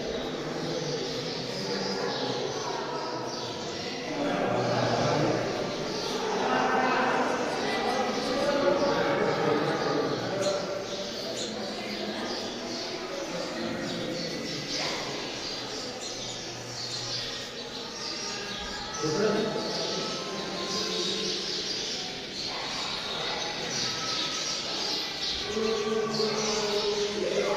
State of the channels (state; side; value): identical; both; correlation 1.00